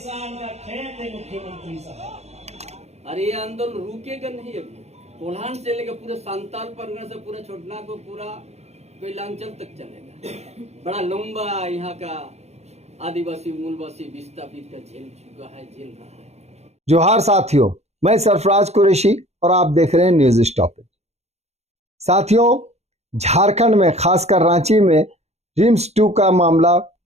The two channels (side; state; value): left; late; 0.31 ms